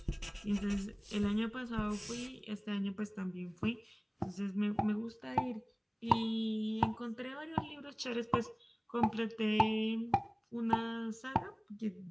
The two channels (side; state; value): both; identical; correlation 1.00